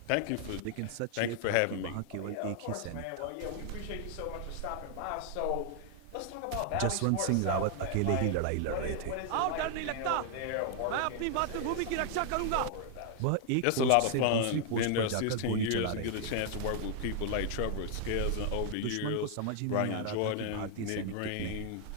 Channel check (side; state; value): both; different; correlation 0.00